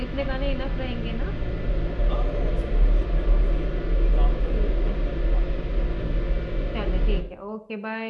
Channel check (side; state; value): both; identical; correlation 1.00